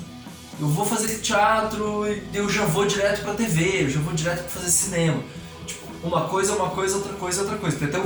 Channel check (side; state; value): both; identical; correlation 1.00